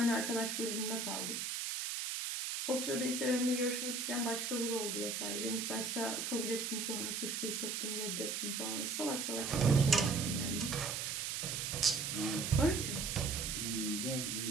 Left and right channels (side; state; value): right; noise; hiss, 2 dB below the sound